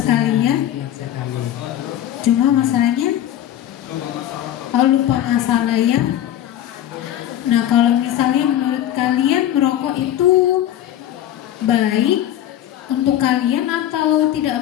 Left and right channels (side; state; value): right; quieter; 11.9 dB